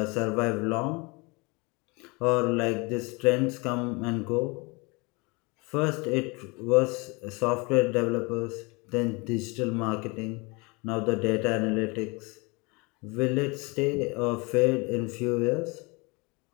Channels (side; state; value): right; quieter; 27.7 dB